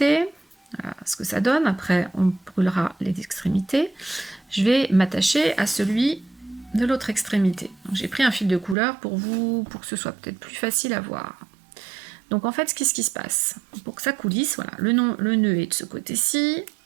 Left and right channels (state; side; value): drops out; left; at 8.8 s